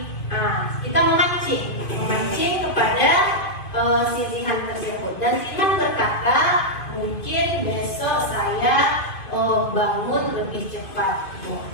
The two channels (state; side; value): late; right; 2.5 ms